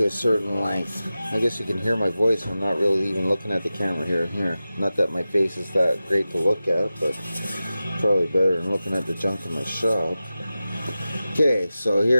a certain length. I guess you can hear my voice. I'm not really even looking at the camera here. Not that my face is that great to look at, but probably better than looking at the junk in my shop. Okay, so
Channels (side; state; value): both; inverted; correlation -0.94